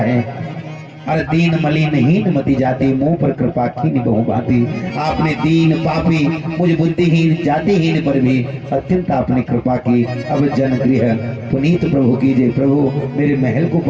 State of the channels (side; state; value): both; identical; correlation 1.00